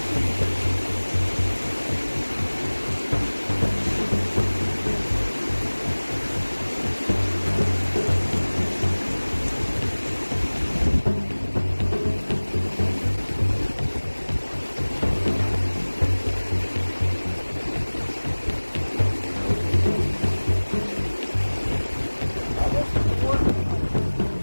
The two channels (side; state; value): both; inverted; correlation -1.00